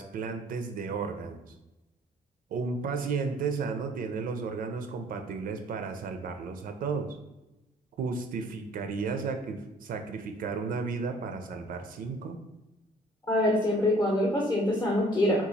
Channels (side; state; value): both; normal; correlation 0.55